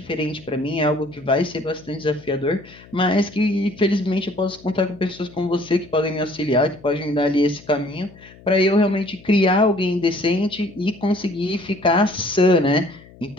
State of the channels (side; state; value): left; noise; hum, 23 dB below the sound